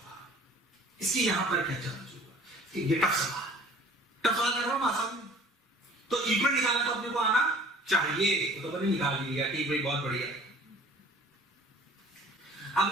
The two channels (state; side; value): normal; both; correlation 0.50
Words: इसके यहां पर क्या चार्ज होगा। ये टफ सवाल कर रहा हूं आसान में। तो इक्वल निकालना तो अपने को आना चाहिए, तो मैंने निकाल लिया। ठीक भाई, बहुत बढ़िया।